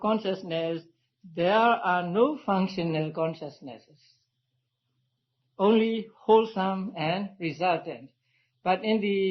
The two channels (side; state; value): both; identical; correlation 1.00